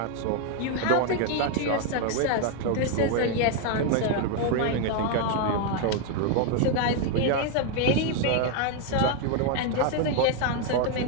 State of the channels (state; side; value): different; both; correlation 0.01